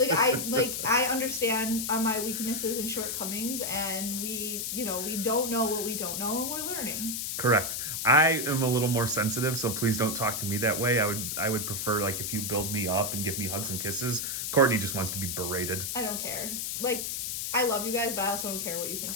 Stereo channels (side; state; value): left; noise; hiss, 2 dB below the sound